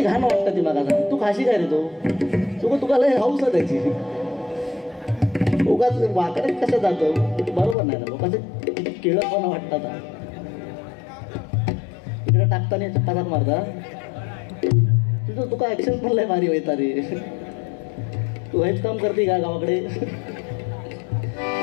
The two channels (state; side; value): drops out; right; at 7.8 s